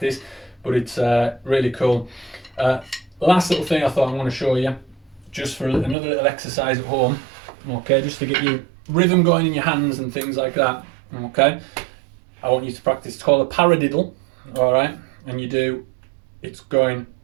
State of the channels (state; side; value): drops out; left; at 6.0 s